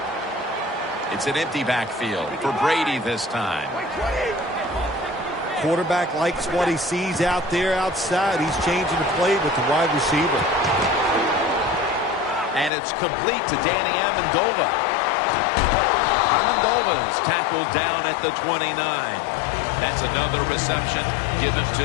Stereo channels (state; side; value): drops out; right; at 12.7 s